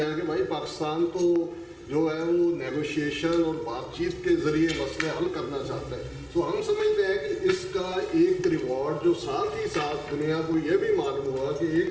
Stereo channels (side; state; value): both; identical; correlation 1.00